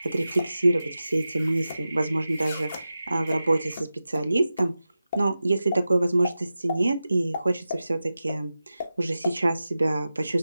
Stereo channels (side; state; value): both; inverted; correlation -0.93